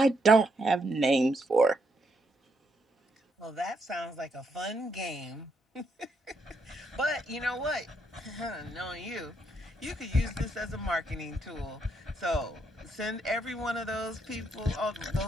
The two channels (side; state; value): both; normal; correlation 0.76